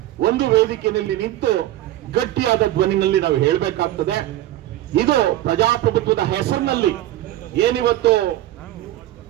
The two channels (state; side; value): quieter; left; 14.4 dB